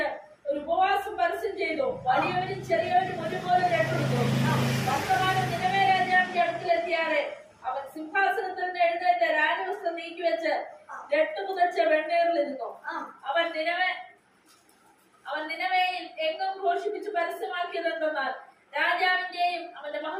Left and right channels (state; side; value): identical; both; correlation 1.00